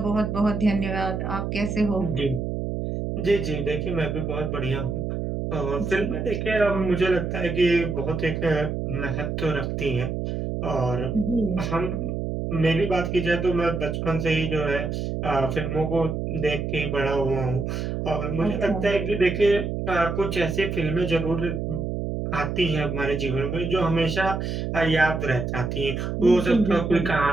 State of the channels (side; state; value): right; noise; hum, 3 dB below the sound